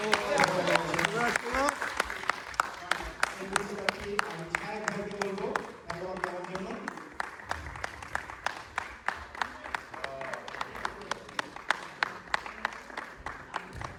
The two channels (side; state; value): both; identical; correlation 1.00